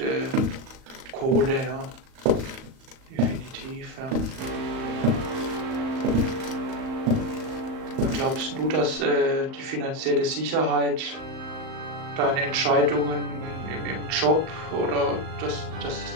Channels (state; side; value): late; left; 38 ms